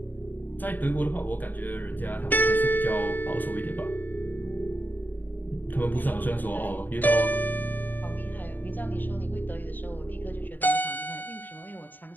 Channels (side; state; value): right; late; 0.089 ms